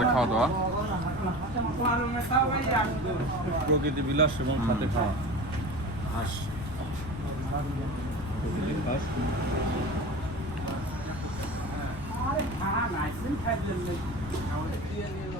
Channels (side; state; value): left; noise; rumble, 10 dB below the sound